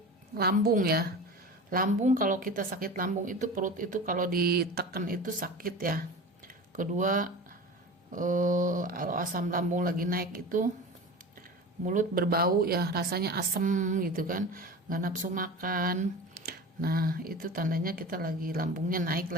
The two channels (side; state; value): both; normal; correlation 0.33